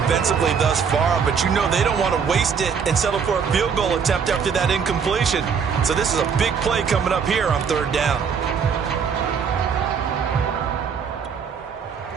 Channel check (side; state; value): left; quieter; 6.5 dB